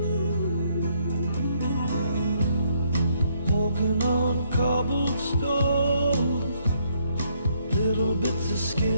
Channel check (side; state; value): both; inverted; correlation -0.70